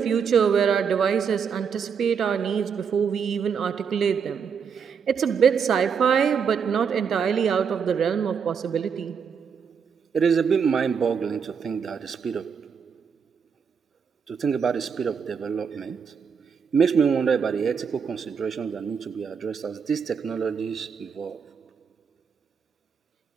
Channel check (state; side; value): quieter; left; 6.6 dB